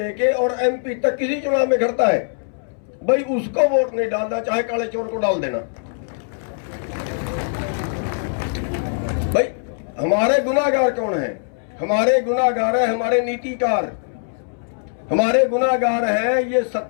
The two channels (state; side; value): silent; right; 65 dB below the other